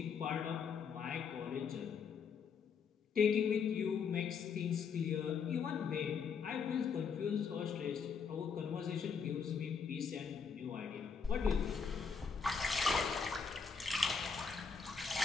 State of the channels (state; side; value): quieter; right; 6.0 dB